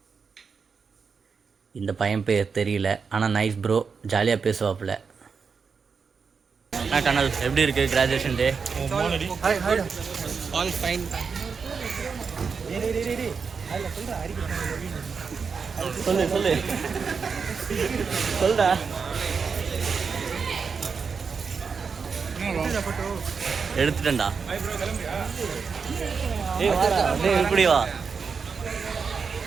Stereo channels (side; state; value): left; quieter; 5.6 dB